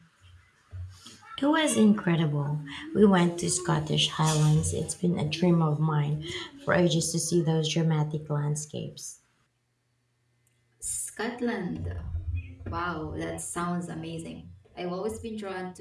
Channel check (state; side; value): identical; both; correlation 1.00